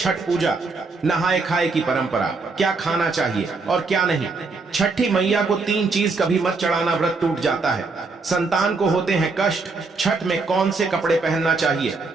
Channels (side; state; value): left; quieter; 4.0 dB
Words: पूजा? नहाए खाए की परंपरा, क्या खाना चाहिए और क्या नहीं। छठी मैया को 3 चीज कभी मत चढ़ाना, व्रत टूट जाता है। संतान को होते हैं कष्ट। छठ में कौन से कपड़े पहनना चाहिए